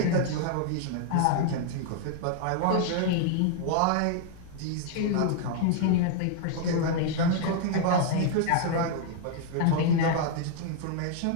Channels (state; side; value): different; both; correlation 0.00